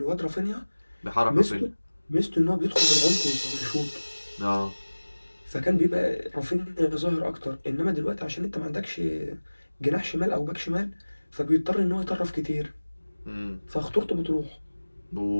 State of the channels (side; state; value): both; inverted; correlation -1.00